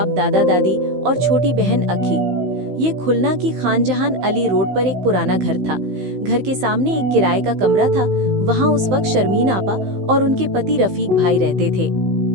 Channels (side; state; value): left; late; 15 ms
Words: दादा दादी और छोटी बहन अखी। ये खुलना की खानजहान अली रोड पर एक पुराना घर था। घर के सामने एक किराए का कमरा था। वहाँ उस वक्त शर्मीन आपा और उनके पति रफीक भाई रहते थे।